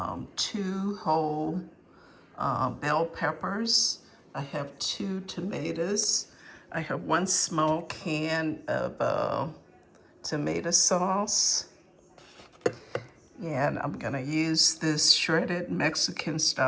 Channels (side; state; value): both; identical; correlation 1.00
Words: two whole bell peppers. I have two tomatoes. I have one small can of tomato sauce. And I'm gonna use this shredded Mexican